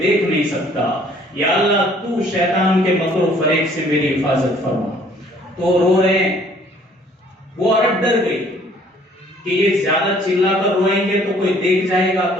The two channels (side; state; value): both; normal; correlation 0.58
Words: نہیں سکتا. یا اللہ، تو شیطان کے مکر و فریب سے میری حفاظت فرما. تو رو رہے ہیں. وہ عورت ڈر گئی کہ یہ زیادہ چلا کر روئیں گے تو کوئی دیکھ جائے گا